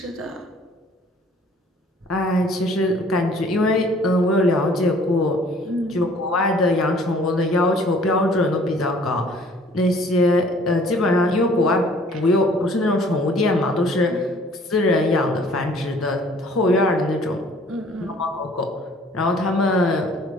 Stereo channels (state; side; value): normal; both; correlation 0.55